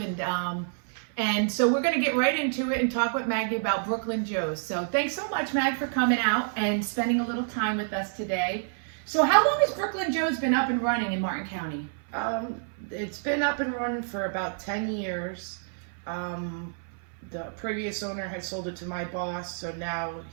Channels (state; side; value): silent; left; 58 dB below the other